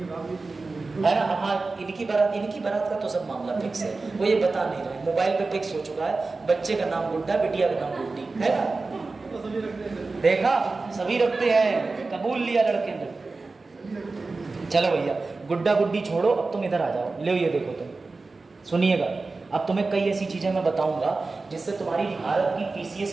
हाँ इनकी बारात का तो सब मामला फिक्स है, वो ये बता नहीं रहे, मोबाइल पे फिक्स हो चुका है, बच्चे का नाम गुड्डा, बिटिया का नाम गुड्डी, है ना। देखा सभी रखते हैं, कबूल लिया लड़के ने। चलो भैया गुड्डा गुड्डी छोड़ो, अब तुम इधर आ जाओ, ले ये देखो तुम सुनिएगा। अब तुम्हें कई ऐसी चीजें मैं बताऊंगा जिससे तुम्हारी भारत की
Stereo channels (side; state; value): left; quieter; 3.7 dB